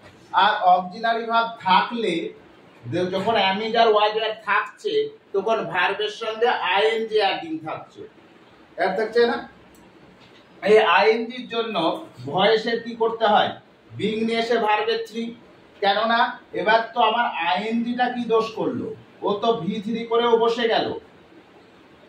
আর অক্সিলারি ভার্ব থাকলে যখন অ্যামিজার ওয়াজ ওয়্যার থাকছে তখন ভার্বের সঙ্গে আইএনজি অ্যাডিং থাকছে, এর থাকছে না? এই আইএনজির জন্য ভয়েসের কি করতে হয়? বিং নিয়ে এসে ভার্বের 3, কেননা এবার তো আমার আইএনজিটা কি দোষ করলো, ও তো V3 করেও বসে গেল,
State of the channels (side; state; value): both; identical; correlation 1.00